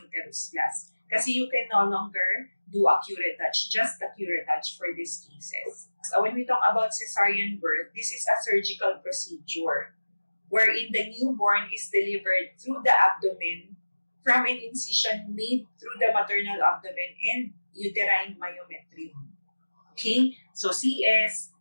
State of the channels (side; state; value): both; inverted; correlation -1.00